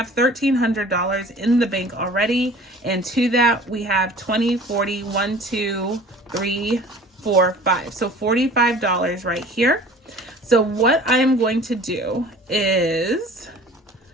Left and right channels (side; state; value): both; normal; correlation 0.46